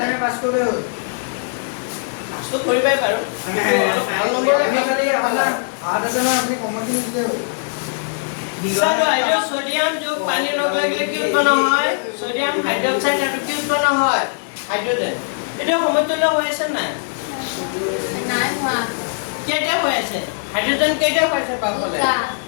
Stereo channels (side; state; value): right; silent; digital silence